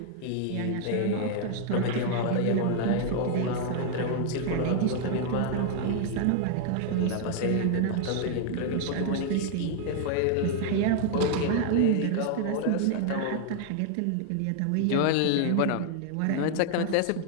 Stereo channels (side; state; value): both; different; correlation 0.00